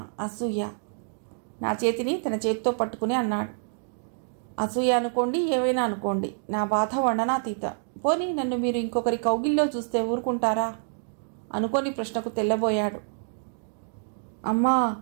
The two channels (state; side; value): silent; left; digital silence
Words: అసూయ. నా చేతిని తన చేతితో పట్టుకుని అన్నాడు. అసూయ అనుకోండి, ఏవైనా అనుకోండి, నా బాధ వర్ణనాతీత. పోనీ నన్ను మీరు ఇంకొకరి కౌగిల్లో చూస్తే ఊరుకుంటారా? అనుకోని ప్రశ్నకు తెల్లబోయాడు. అమ్మా,